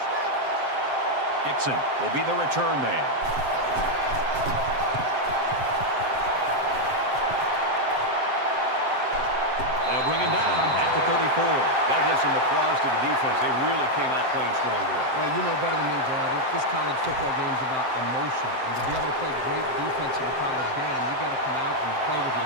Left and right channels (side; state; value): left; late; 7.7 ms